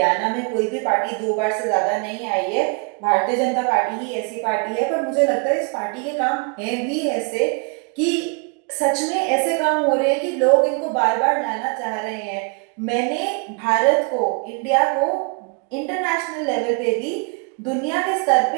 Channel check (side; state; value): left; quieter; 33.2 dB